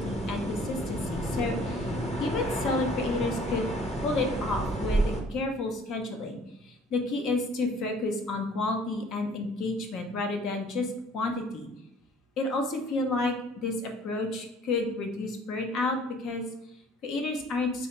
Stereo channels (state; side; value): normal; both; correlation 0.54